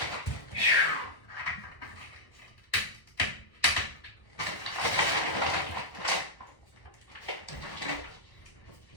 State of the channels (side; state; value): right; late; 1.1 ms